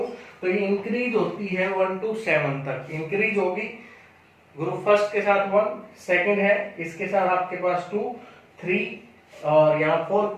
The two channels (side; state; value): both; identical; correlation 1.00